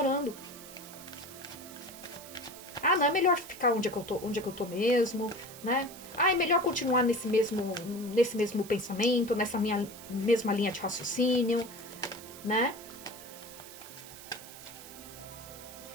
Ah, não, é melhor ficar onde é que eu tô mesmo, né? Ah, é melhor continuar nesse mesmo pensamento, nessa minha mesma linha de raciocínio, né?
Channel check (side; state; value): right; noise; hiss, 15 dB below the sound